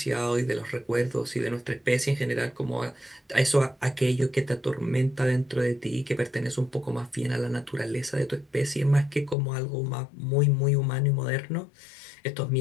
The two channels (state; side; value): drops out; right; at 9.3 s